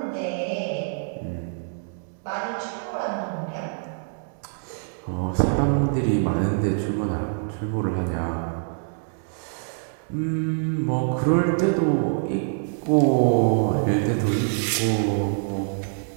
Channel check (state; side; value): silent; left; digital silence